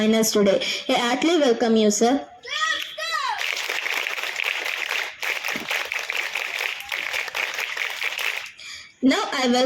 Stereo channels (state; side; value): identical; both; correlation 1.00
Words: us today. I heartily welcome you, sir. Now I